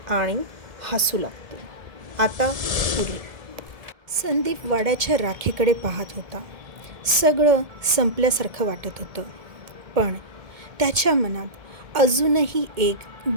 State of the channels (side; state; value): left; late; 1.7 ms